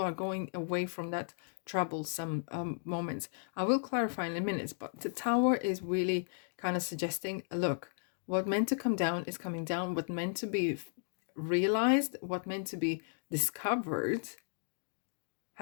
going away from that troublesome moments. I will clarify in a minute, but the Tower is really kind of suggesting, look, what meant to come down is coming down. What meant to be realized, what meant to be discovered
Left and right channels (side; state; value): right; silent; digital silence